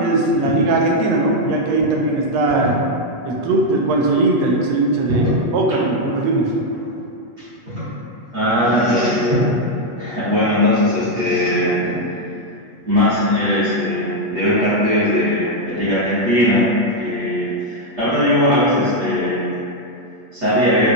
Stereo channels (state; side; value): late; left; 8.3 ms